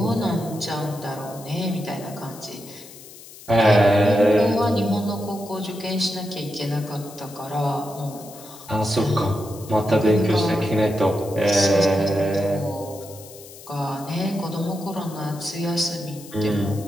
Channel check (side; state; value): left; noise; hiss, 18 dB below the sound